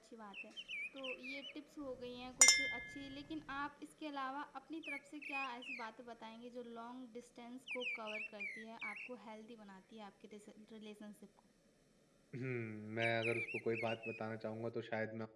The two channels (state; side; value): identical; both; correlation 1.00